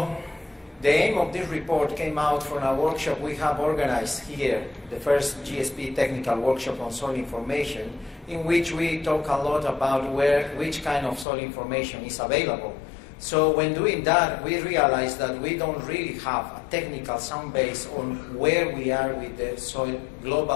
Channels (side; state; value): right; drops out; at 11.2 s